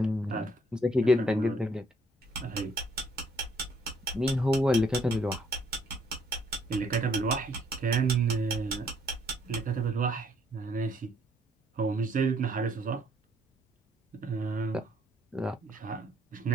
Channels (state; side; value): normal; both; correlation 0.66